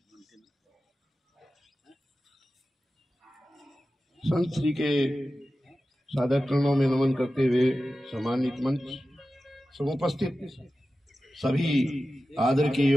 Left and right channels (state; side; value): normal; both; correlation 0.94